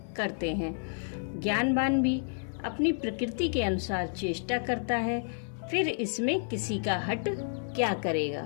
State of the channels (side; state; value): right; silent; 58 dB below the other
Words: करते हैं। ज्ञानवान भी अपनी प्रकृति के अनुसार चेष्टा करता है, फिर इसमें किसी का हट क्या